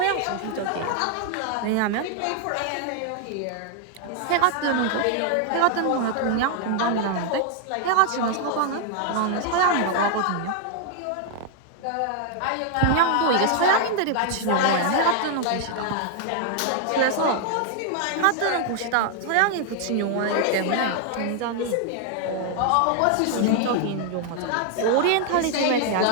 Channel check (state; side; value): different; both; correlation 0.00